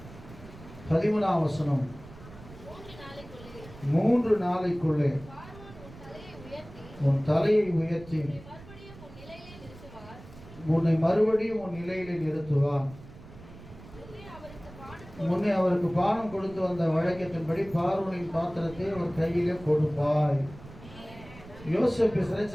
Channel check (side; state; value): right; noise; rumble, 18 dB below the sound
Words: 13ஆம் வசனம், 3 நாளைக்குள்ளே உன் தலையை உயர்த்தி உன்னை மறுபடியும் உன் நிலையிலே நிறுத்துவார். முன்னே அவருக்கு பானம் கொடுத்து வந்த வழக்கத்தின்படி பார்வோனின் பாத்திரத்தை ஒரு கையிலே கொடுப்பாய். யோசேப்பு